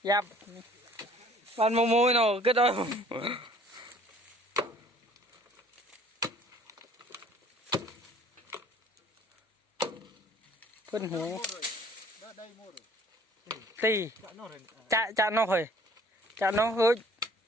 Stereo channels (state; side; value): normal; both; correlation 0.54